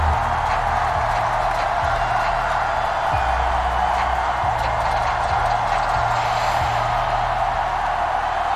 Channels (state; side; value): identical; both; correlation 1.00